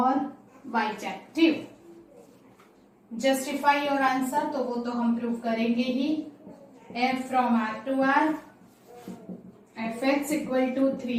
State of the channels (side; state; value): both; identical; correlation 1.00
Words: bijective. Justify your answer, तो वो तो हम prove करेंगे ही. F from R to R, fx equal to